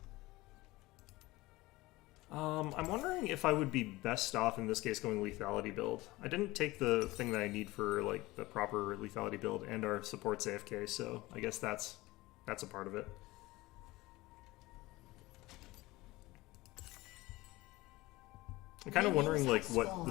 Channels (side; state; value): right; quieter; 19.9 dB